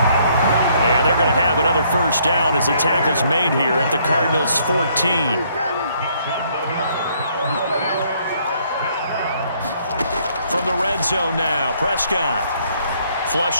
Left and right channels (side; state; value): both; inverted; correlation -0.67